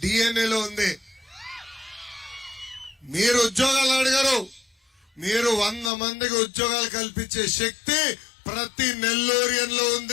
డిఎన్ఏలో ఉంది. మీరు ఉద్యోగాలు అడిగారు, మీరు 100 మందికి ఉద్యోగాలు కల్పించే శక్తి ప్రతి నెల్లూరియన్లో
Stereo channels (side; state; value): right; drops out; at 5.9 s